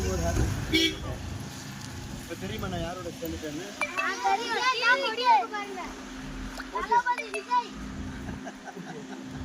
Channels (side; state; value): both; identical; correlation 1.00